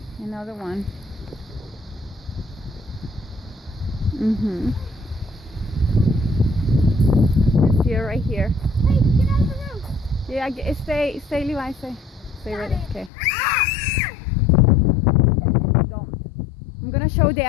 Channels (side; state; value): right; drops out; at 13.1 s